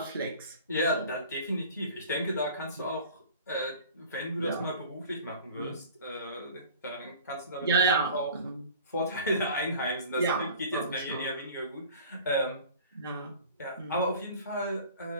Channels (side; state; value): both; inverted; correlation -0.43